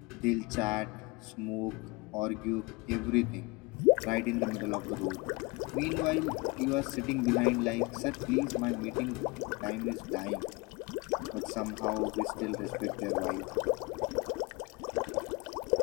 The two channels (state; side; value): quieter; right; 26.5 dB